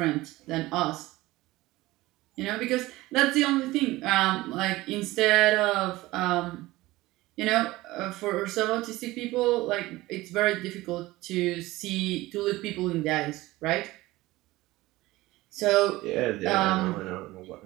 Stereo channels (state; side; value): quieter; left; 18.7 dB